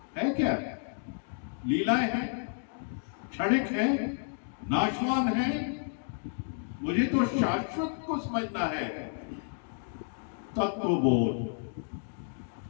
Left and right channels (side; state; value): right; silent; digital silence